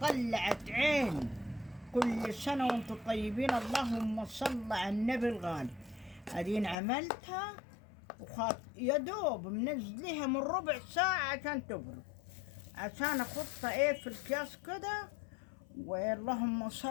عين. كل سنة وانتم طيبين، اللهم صل على النبي الغالي. أدين عملتها يا دوب منزليها من ربع ساعة عشان تبرد، عشان أحطها إيه في الكياس كده، واللهم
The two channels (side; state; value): right; drops out; at 6.8 s